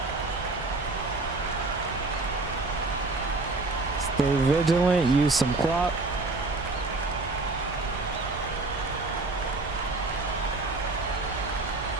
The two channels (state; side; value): quieter; left; 3.3 dB